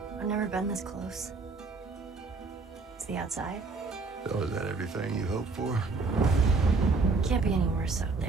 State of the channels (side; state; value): left; quieter; 4.0 dB